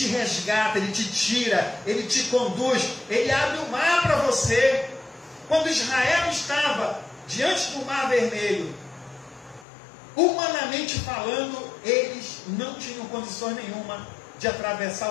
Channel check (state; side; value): drops out; right; at 9.7 s